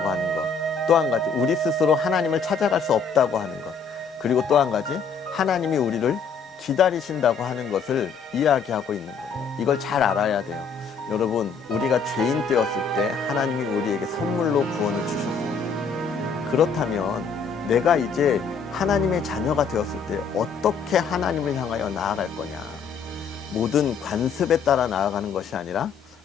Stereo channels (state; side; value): quieter; right; 5.6 dB